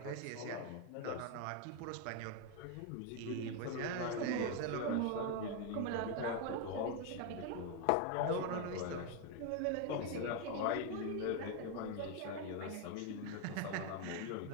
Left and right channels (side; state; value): both; different; correlation 0.01